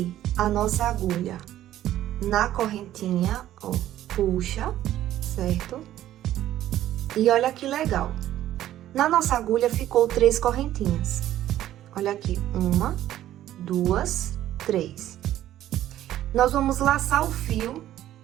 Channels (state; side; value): quieter; left; 12.9 dB